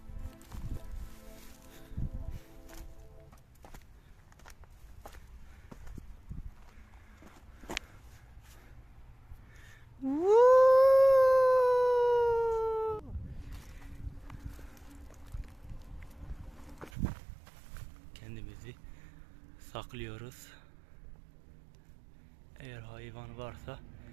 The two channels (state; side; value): drops out; left; at 16.9 s